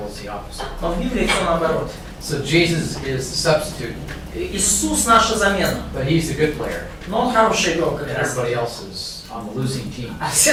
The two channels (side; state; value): both; identical; correlation 1.00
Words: it's the opposite. Но в Библии все наоборот. So Jesus is the substitute, Иисус наша замена, but he's the good player. но он хороший игрок как And раз. everybody else is on the losing team. А